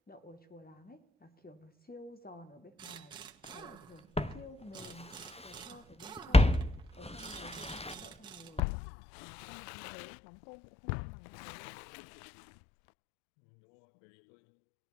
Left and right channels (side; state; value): right; drops out; at 8.6 s